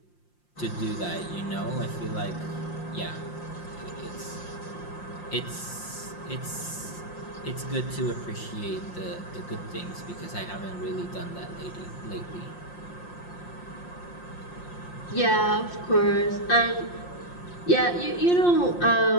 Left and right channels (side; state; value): right; late; 5.7 ms